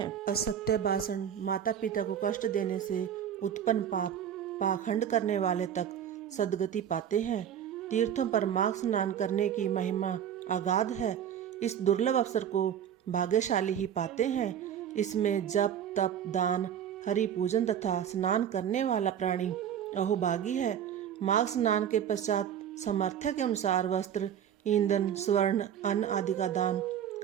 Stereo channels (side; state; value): left; quieter; 9.3 dB